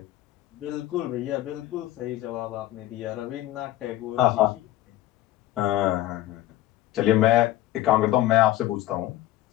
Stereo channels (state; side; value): quieter; right; 15.1 dB